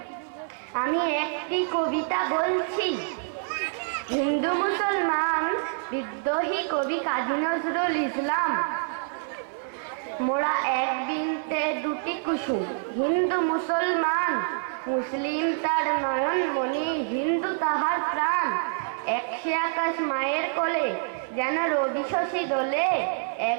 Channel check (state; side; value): silent; left; 60 dB below the other